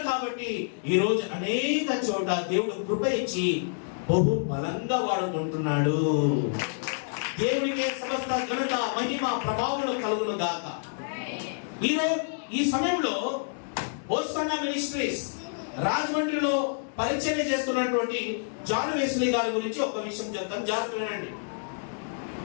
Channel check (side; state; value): right; silent; digital silence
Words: కాబట్టి ఈ రోజు అనేక చోట దేవుడు కృప ఇచ్చి బహు బలంగా వాడుకుంటున్నాడు. దేవుడికే సమస్త ఘనత, మహిమ, ప్రభావములు కలుగును గాక. ఈ సమయంలో హోసన్నా మినిస్ట్రీస్ రాజమండ్రిలో పరిచర్య చేస్తున్నటువంటి జాన్ వెస్లీ గారి గురించి ఒక విషయం చెప్తాను, జాగ్రత్త వినండి.